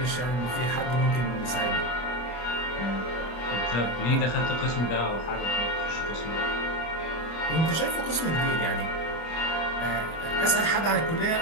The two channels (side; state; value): right; late; 25 ms